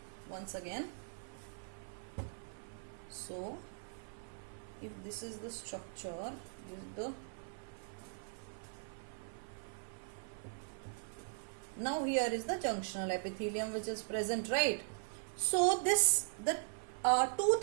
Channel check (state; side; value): silent; left; 51 dB below the other